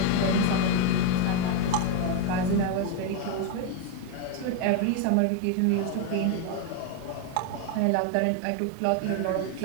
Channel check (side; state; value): both; different; correlation 0.01